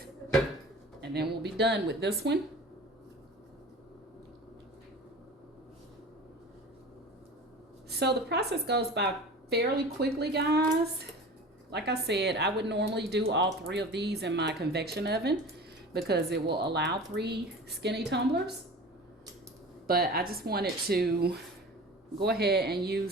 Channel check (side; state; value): both; normal; correlation 0.37